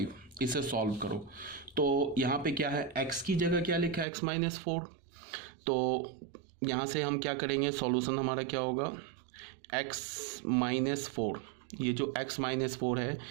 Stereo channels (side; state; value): left; drops out; at 4.0 s